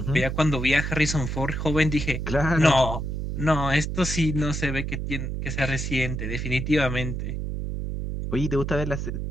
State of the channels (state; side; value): noise; right; hum, 3 dB below the sound